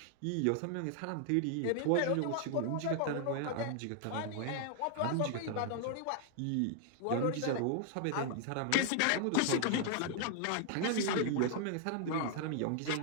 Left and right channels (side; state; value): both; different; correlation 0.00